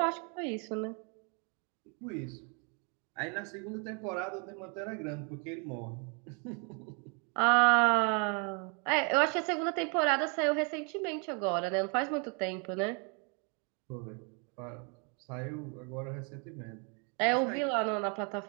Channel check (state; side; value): quieter; left; 36.2 dB